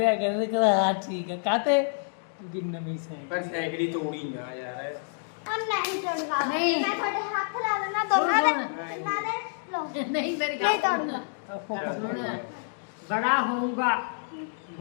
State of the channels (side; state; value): right; silent; digital silence